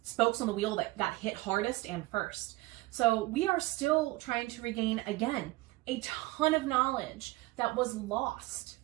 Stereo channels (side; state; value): left; quieter; 20.3 dB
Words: spokes on the wheel that got hit hardest and first. So we are still trying to regain, again, a ton of knowledge that was lost